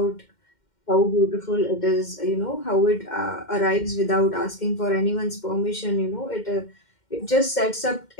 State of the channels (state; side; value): late; right; 2.1 ms